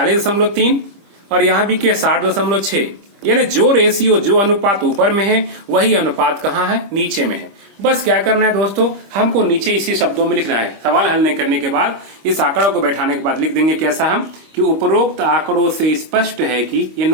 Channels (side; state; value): left; late; 25 ms